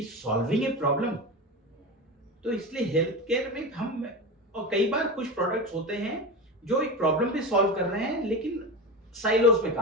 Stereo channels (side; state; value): both; normal; correlation 0.24